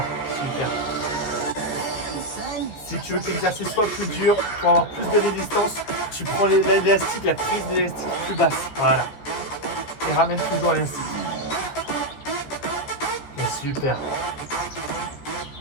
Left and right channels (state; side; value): late; right; 14 ms